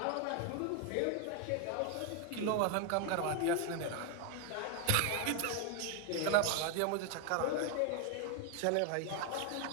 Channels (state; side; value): different; both; correlation 0.00